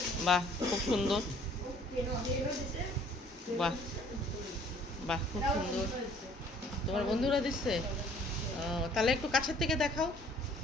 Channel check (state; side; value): normal; both; correlation 0.57